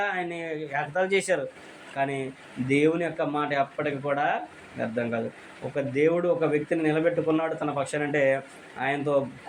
ఆయన్ని ఎగతాళి చేశారు. కానీ దేవుని యొక్క మాట ఎప్పటికీ కూడా వ్యర్థం కాదు. ఒక దేవుడు ఒక వ్యక్తిని నిలబెట్టుకున్నాడు తన పక్షానంటే ఆయనతో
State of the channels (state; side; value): identical; both; correlation 1.00